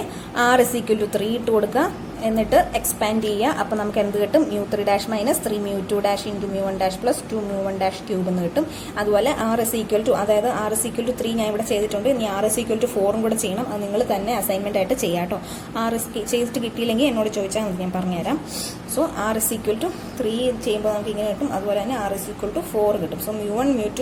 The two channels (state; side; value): identical; both; correlation 1.00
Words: ആർ ഇസ് ഈക്വൽ ടു 3 ഇട്ട് കൊടുക്കുക, എന്നിട്ട് എക്സ്പാൻഡ് ചെയ്യുക. അപ്പോൾ നമുക്ക് എന്ത് കിട്ടും? μ3 dash minus 3 μ2 dash into μ1 dash plus 2 μ1 dash cube എന്ന് കിട്ടും. അതുപോലെ ആർ ഇസ് ഈക്വൽ ടു, അതായത് ആർ ഇസ് ഈക്വൽ ടു 3 ഞാൻ ഇവിടെ ചെയ്തിട്ടുണ്ട്. ഇനി ആർ ഇസ് ഈക്വൽ ടു 4 കൂടെ ചെയ്യണം. അത് നിങ്ങൾ തന്നെ അസൈൻമെന്റ് ആയിട്ട് ചെയ്യാം കേട്ടോ. ആർ ഇസ് ചെയ്തിട്ട് കിട്ടിയില്ലെങ്കിൽ എന്നോട് ചോദിച്ചാൽ മതി, ഞാൻ പറഞ്ഞുതരാം. So r is equal to 3 ചെയ്യുമ്പോൾ നമുക്ക് ഇങ്ങനെ കിട്ടും. അതുപോലെ തന്നെ ആർ ഇസ് ഈക്വൽ ടു 4 കിട്ടും. സോ μ1